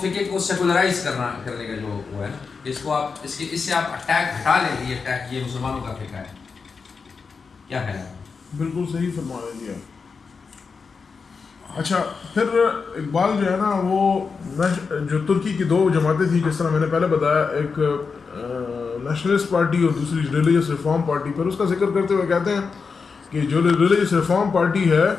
کو سیکولرائز کرنے کا جو وہ ہے نا، اس کو آپ اس سے آپ اٹیک ہٹا لیں گے، یہ اٹیک یہ مسلمانوں کا فقہ ہے. کیا خیال ہے؟ بالکل صحیح فرما رہے ہیں. اچھا پھر اقبال جو ہے نا وہ جو ترکی کی دو جماعتیں تھیں جس طرح میں نے پہلے بتایا، ایک نیشنلسٹ پارٹی اور دوسری ریلیجس ریفارم پارٹی، پھر اس کا ذکر کرتے ہوئے کہتے ہیں کہ جو ریلیجس ریفارم پارٹی ہے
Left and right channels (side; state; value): right; quieter; 5.1 dB